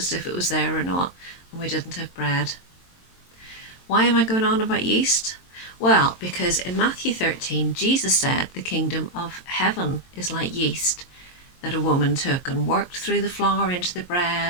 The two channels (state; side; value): late; right; 22 ms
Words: if it was there or not, and we didn't have bread. Why am I going on about yeast? Well, because in Matthew 13, Jesus said the kingdom of heaven is like yeast that a woman took and worked through the flour into the